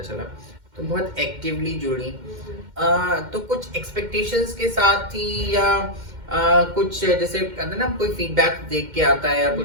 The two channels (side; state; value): left; late; 2.1 ms